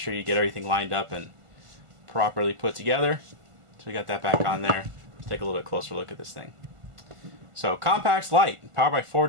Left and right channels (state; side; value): late; left; 1.5 ms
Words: you get everything lined up and properly put together. So we got that back on there. Let's take a little bit closer look at this thing. So compact light, powered by